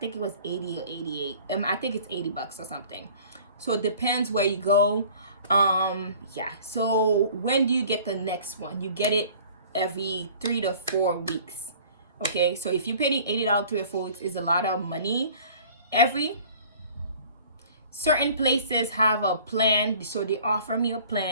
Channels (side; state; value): both; inverted; correlation -0.49